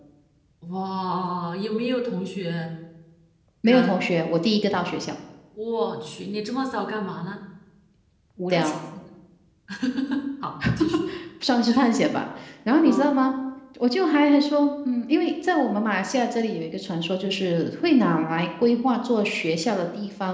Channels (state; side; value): identical; both; correlation 1.00